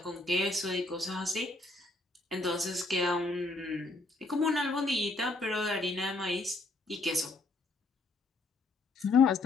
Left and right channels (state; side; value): quieter; right; 3.2 dB